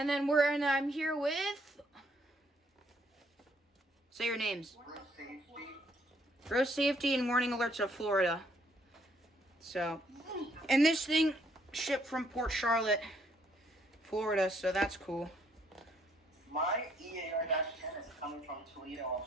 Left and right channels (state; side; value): normal; both; correlation 0.68